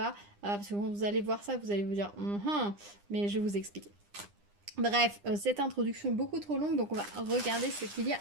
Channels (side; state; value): left; late; 9.9 ms